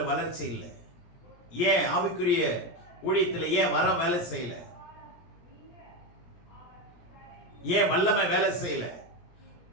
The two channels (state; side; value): late; right; 17 ms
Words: வளர்ச்சி இல்லை? ஏன் ஆவிக்குரிய ஊழியத்தில் ஏன் வர வேலை செய்யல? ஏன் வல்லமை வேலை செய்யல?